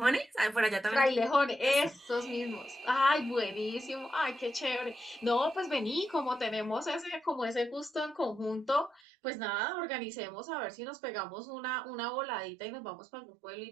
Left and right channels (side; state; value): left; drops out; at 9.0 s